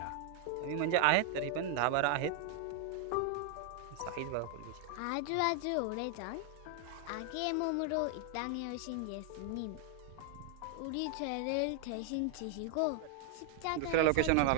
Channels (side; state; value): both; different; correlation 0.00